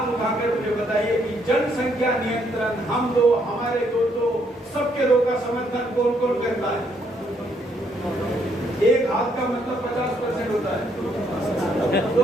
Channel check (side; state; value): both; normal; correlation 0.71